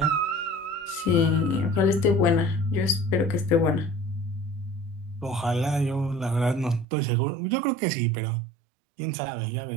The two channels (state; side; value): drops out; left; at 6.9 s